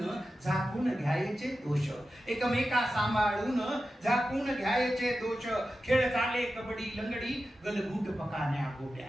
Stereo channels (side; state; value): both; normal; correlation 0.92